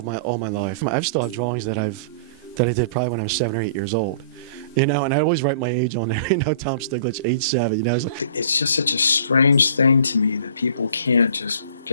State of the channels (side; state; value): both; inverted; correlation -0.48